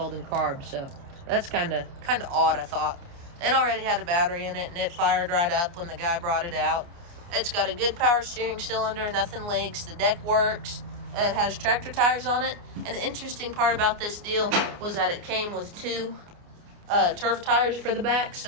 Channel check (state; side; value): late; left; 29 ms